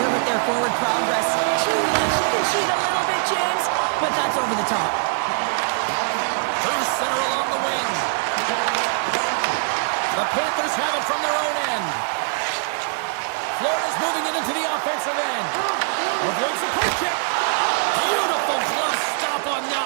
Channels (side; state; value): left; silent; digital silence